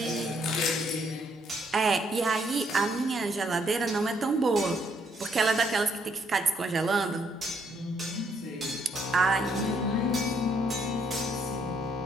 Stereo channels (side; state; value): both; normal; correlation 0.71